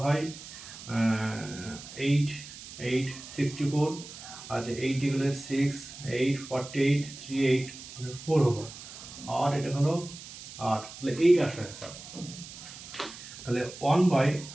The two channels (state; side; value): noise; right; hiss, 14 dB below the sound